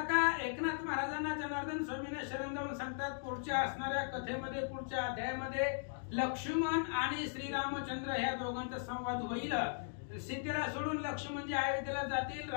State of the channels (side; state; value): right; silent; digital silence